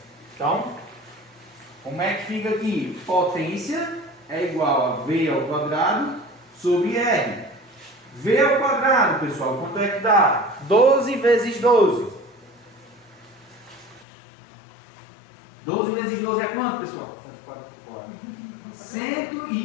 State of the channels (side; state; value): right; drops out; at 14.1 s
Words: Então, como é que fica aqui? Potência é igual a V ao quadrado sobre R. V ao quadrado, pessoal, quanto é que dá? 12 vezes 12. 12 vezes 12 é quanto, pessoal?